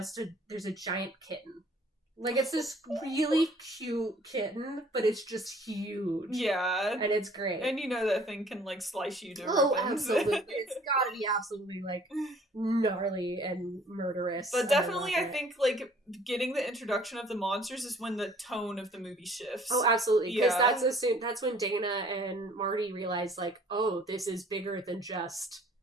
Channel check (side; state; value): both; normal; correlation 0.55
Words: there's a giant kitten. Like, it's this really cute kitten, but it's just huge. Yeah. And it's great. And you know that thing can, like, slice you to ribbons. Oh, absolutely. It's gotta be absolutely, like, gnarly and murderous. But definitely, I think, like, getting the introduction of the monsters is when the tone of the movie shifts. Oh, absolutely. Because that's when Dana and Marty realize, like, oh, this is bigger than just,